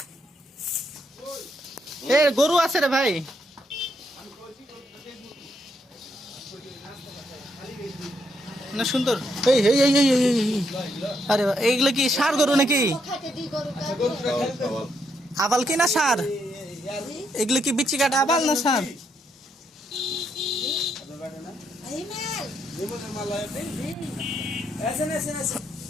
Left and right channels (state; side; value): normal; both; correlation 0.77